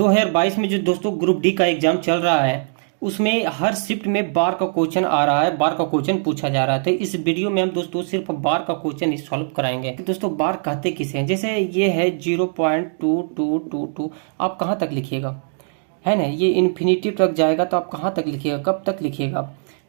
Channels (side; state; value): left; silent; digital silence